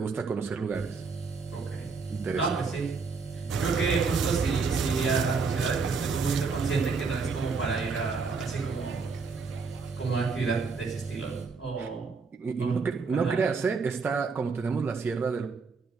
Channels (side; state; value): left; quieter; 4.8 dB